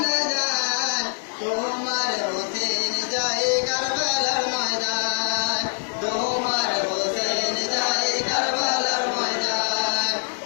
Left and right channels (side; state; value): right; silent; 63 dB below the other